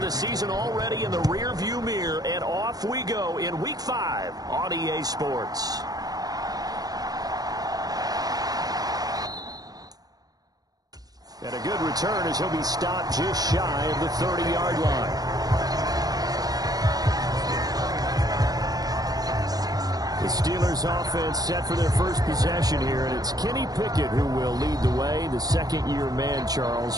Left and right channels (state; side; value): late; left; 0.18 ms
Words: the season already in the rear-view mirror, and off we go in Week 5 on EA Sports. And a good return as he'll be stopped just shy of the 30-yard line. The Steelers offense set for their first possession here, and it's Kenny Pickett who will lead the way, the second-year man, Charles,